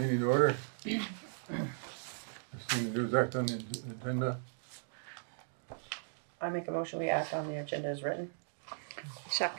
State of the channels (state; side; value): silent; left; digital silence